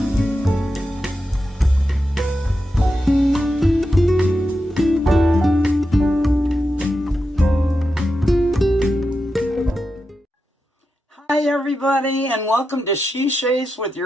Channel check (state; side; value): normal; both; correlation 0.89